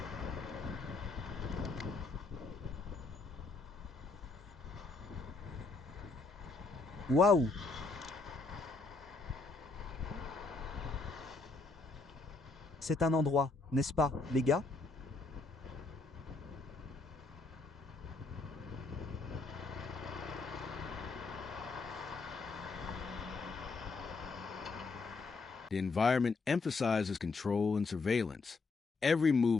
Waouh! C'est un endroit, n'est-ce pas, les gars? The environment emphasizes control and surveillance. Every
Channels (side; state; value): right; quieter; 3.9 dB